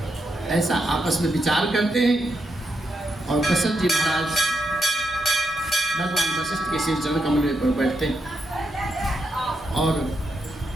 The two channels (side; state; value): both; normal; correlation 0.82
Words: ऐसा आपस में विचार करते हैं और दशरथ जी महाराज भगवान वशिष्ठ के श्री चरण कमल पर बैठते हैं। और